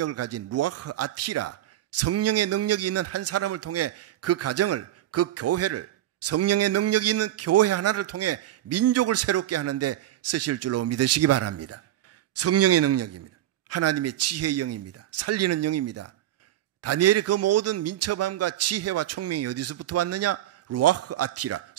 가진 루아흐 아티라, 성령의 능력이 있는 한 사람을 통해 그 가정을, 그 교회를, 성령의 능력이 있는 교회 하나를 통해 민족을 새롭게 하는데 쓰실 줄로 믿으시기 바랍니다. 성령의 능력입니다. 하나님의 지혜의 영입니다. 살리는 영입니다. 다니엘의 그 모든 민첩함과 지혜와 총명이 어디서부터 왔느냐? 루아흐 아티라,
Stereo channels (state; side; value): quieter; left; 13.2 dB